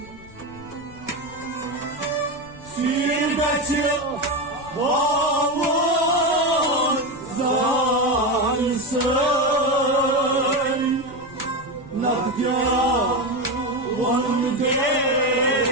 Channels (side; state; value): left; noise; rumble, 20 dB below the sound